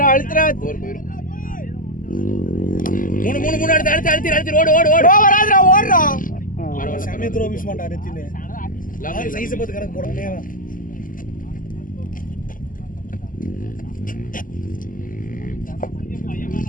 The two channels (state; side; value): late; right; 0.39 ms